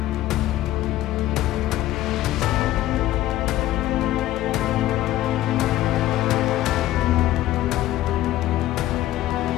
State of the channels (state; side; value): quieter; right; 14.8 dB